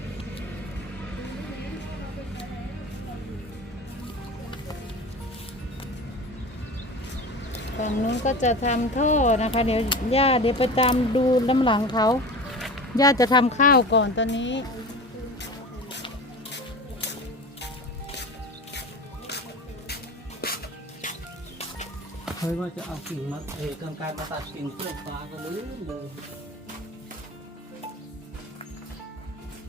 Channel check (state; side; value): normal; both; correlation 0.33